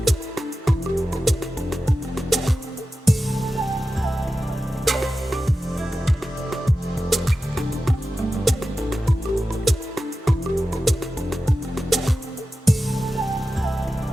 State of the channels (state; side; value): normal; both; correlation 0.93